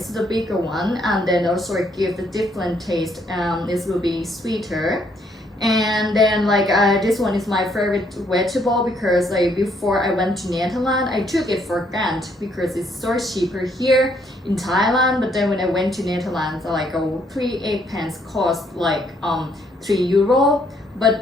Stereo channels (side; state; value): both; normal; correlation 0.70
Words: is the bigger one, and then also give the different taste. This will be sweeter. And then this one is my favorite vegetable because before I went to Netherlands I took it for granted because it's so cheaper here in Thailand, but then when I went to Netherlands 3 eggplants cost €3, but